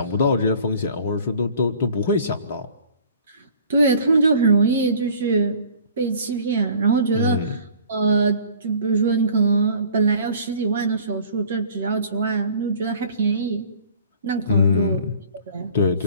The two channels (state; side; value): inverted; both; correlation -0.50